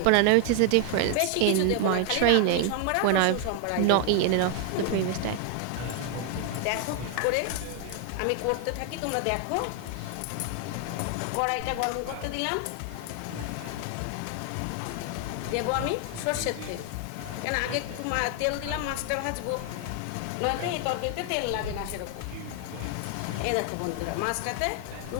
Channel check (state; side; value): different; both; correlation 0.00